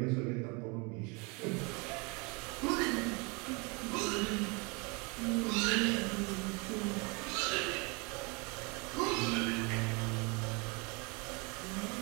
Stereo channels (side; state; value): left; quieter; 30.1 dB